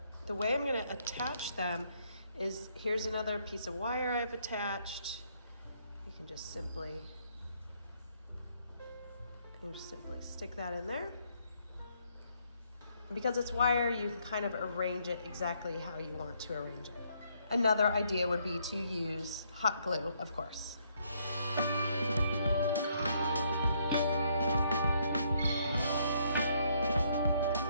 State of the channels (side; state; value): both; inverted; correlation -0.71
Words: the way I'm gonna attach them is, here's another piece of wire I've attached. You can just simply stick that in there. And because it's wire, you can kind of arrange it exactly how you want to arrange it. Another idea would be to use hot glue, of course.